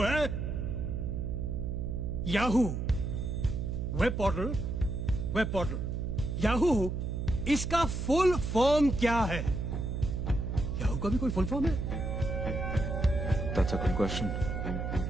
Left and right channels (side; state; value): right; noise; hum, 3 dB below the sound